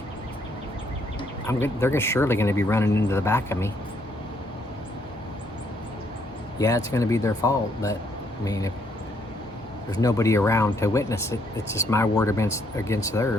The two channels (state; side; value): normal; both; correlation 0.70